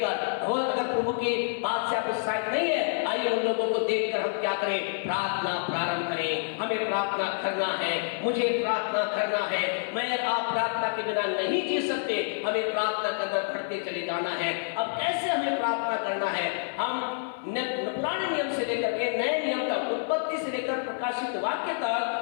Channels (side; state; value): right; silent; digital silence